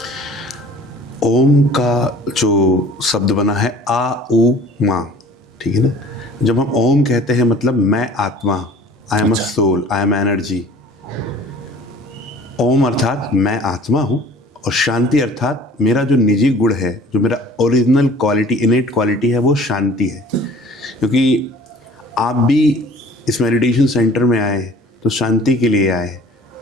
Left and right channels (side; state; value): both; normal; correlation 0.48